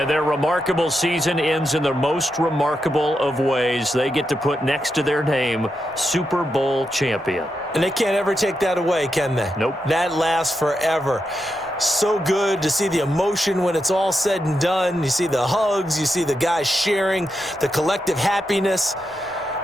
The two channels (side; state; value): both; normal; correlation 0.86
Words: their remarkable season ends in the most remarkable of ways. They get to put next to their name, Super Bowl champion. And they can't ever take that away, can they? Nope. That lasts forever. So good to see the emotion when it's all said and done. You see the hugs, you see the guys sharing, the collective happiness.